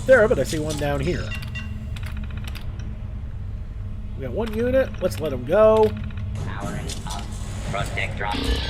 there, but I see one down here. We got one unit. Let's let him go. Powering up. Protector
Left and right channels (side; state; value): both; identical; correlation 1.00